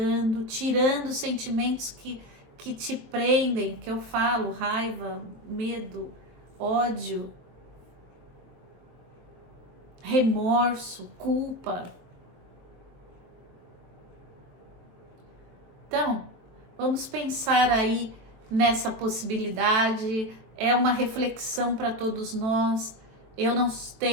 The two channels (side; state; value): left; late; 23 ms